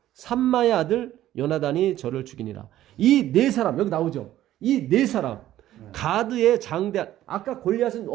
삼마의 아들 요나단이 저를 죽이니라. 이 4사람 여기 나오죠. 이 4사람 가드의 장대한, 아까 골리앗은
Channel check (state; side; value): quieter; left; 13.4 dB